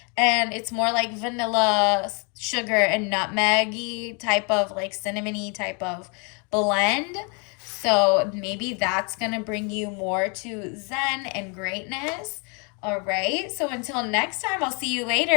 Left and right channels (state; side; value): quieter; right; 34.8 dB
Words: And it's more like vanilla, sugar, and nutmeggy type of, like cinnamony type of blend. So maybe that's going to bring you more to zen and greatness. All right. So until next time, I'll see you